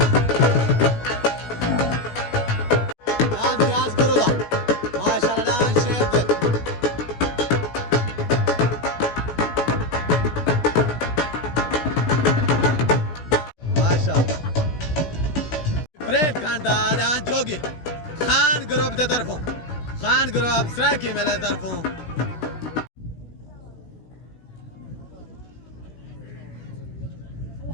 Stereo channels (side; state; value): right; late; 16 ms